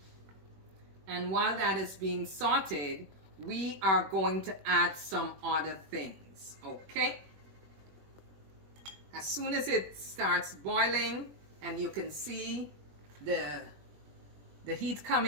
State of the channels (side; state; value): left; late; 21 ms